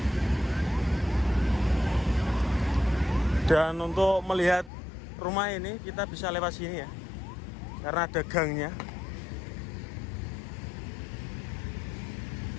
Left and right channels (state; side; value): drops out; right; at 4.7 s